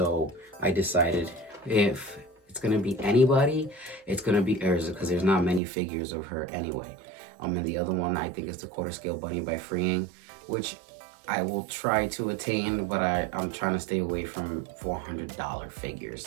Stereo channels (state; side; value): drops out; left; at 5.6 s